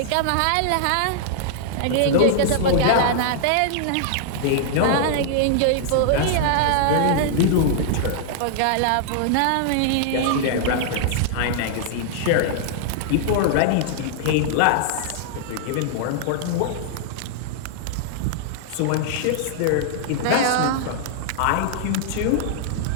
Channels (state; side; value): different; both; correlation -0.01